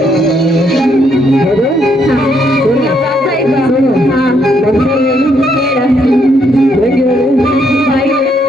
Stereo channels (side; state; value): both; normal; correlation 0.73